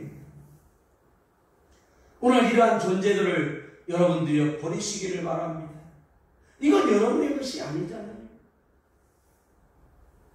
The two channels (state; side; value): identical; both; correlation 1.00